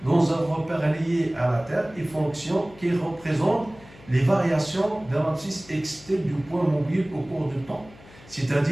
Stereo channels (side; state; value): left; noise; hum, 22 dB below the sound